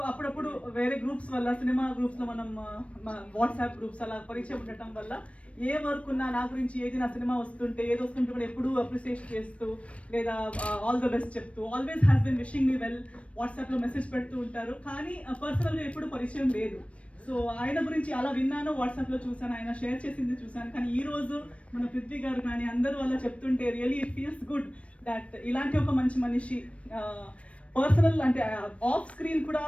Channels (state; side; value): late; right; 0.063 ms